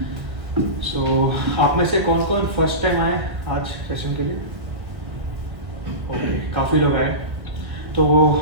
सो आप में से कौन कौन फर्स्ट टाइम आए आज सेशन के लिए? ओके, काफ़ी लोग आए। तो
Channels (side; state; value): left; late; 1.7 ms